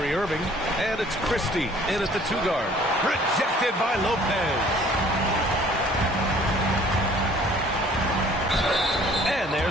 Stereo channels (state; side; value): normal; both; correlation 0.54